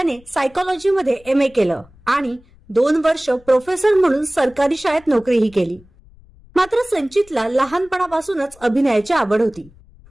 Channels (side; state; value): left; noise; rumble, 26 dB below the sound